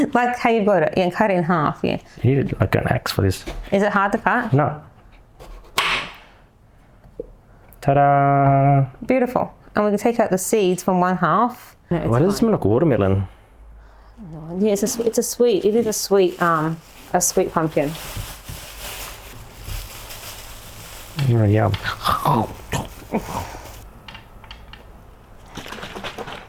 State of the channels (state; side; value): identical; both; correlation 1.00